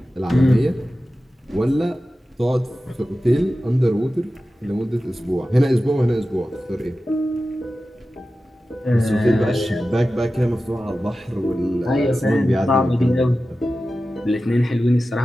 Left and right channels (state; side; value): normal; both; correlation 0.94